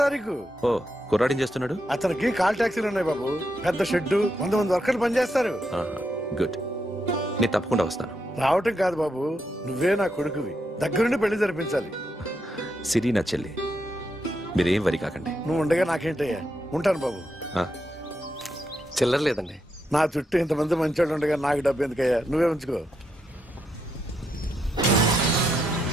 తారీఖు. ఓ, కుర్రాడిని చేస్తున్నాడు. అతనికి కాల్ టాక్సీలు ఉన్నాయి బాబు. పెద్ద షెడ్డు, 100 మంది వర్కర్లు పనిచేస్తారు. గుడ్. నేను తప్పకుండా వస్తాను. రావటం కాదు బాబు, నువ్వే నా కొడుకువి. దగ్గరుండి పెళ్లి జరిపించాలి. సిరి నా చెల్లి, మీరేం వరి కాకండి. నువ్వు ఉండగా నాకేంటయ్యా. ఉంటాను బాబు. చిల్లర లేదండి. నా చుట్టూ ఇంతమంది మంచోళ్ళు ఉండగా నాకు డబ్బు ఎందుకయ్యా? నువ్వే ఉంచుకో.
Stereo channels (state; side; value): normal; both; correlation 0.82